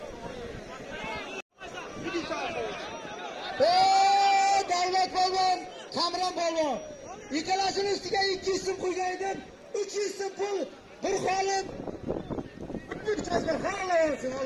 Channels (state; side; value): identical; both; correlation 1.00